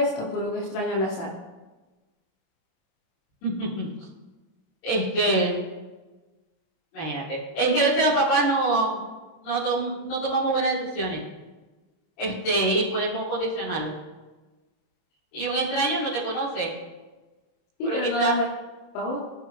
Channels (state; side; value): late; right; 27 ms